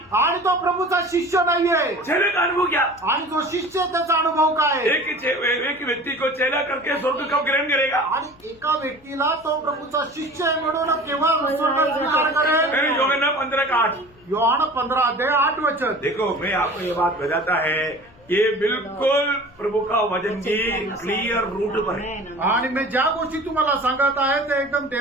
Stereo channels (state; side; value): noise; left; hum, 27 dB below the sound